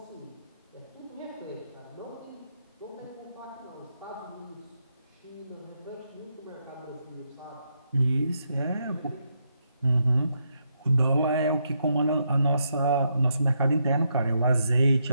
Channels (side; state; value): both; inverted; correlation -0.79